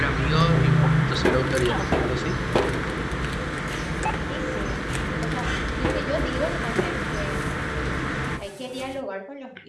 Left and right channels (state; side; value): identical; both; correlation 1.00